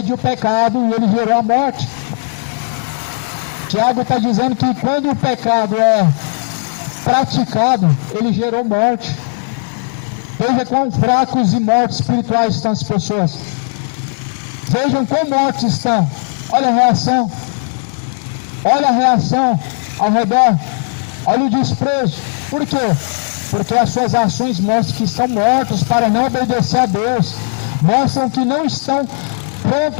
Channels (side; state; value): right; silent; digital silence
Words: o pecado e ele gerou a morte. Tiago está dizendo que quando o pecado é praticado, ele gerou morte. Veja quão fracos e mortos espirituais estão as pessoas. Vejam quão mortos estão. Olha a reação. Olha a reação ao redor. Olha o desprezo. Por quê? Porque as suas ações mostram que estão mortos para não obedecer a Deus. Mostram que não estão